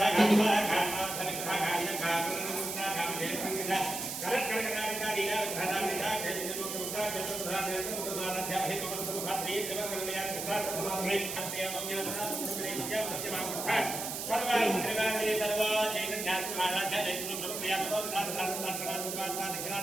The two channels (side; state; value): right; noise; hiss, 4 dB below the sound